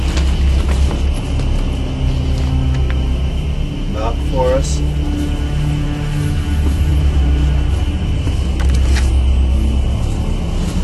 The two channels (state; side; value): identical; both; correlation 1.00